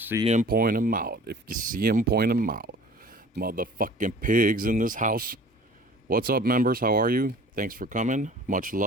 'em, point 'em out. If you see 'em, point 'em out. Motherfucking pigs in this house. What's up, members? How are you? Thanks for coming. Much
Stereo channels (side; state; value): both; normal; correlation 0.46